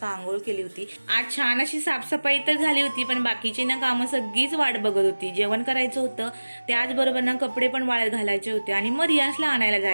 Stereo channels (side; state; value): both; inverted; correlation -1.00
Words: आंघोळ केली होती. आज छान अशी साफसफाई तर झाली होती, पण बाकीची ना कामं सगळीच वाट बघत होती. जेवण करायचं होतं, त्याचबरोबर ना कपडे पण वाळत घालायचे होते आणि मग रियान्सला आणायला